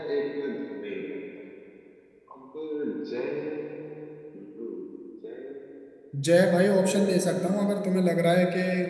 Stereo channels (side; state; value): both; identical; correlation 1.00